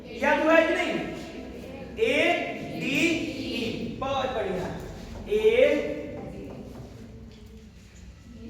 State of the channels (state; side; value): identical; both; correlation 1.00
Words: याद हुआ है कि नहीं? ADE, बहुत बढ़िया,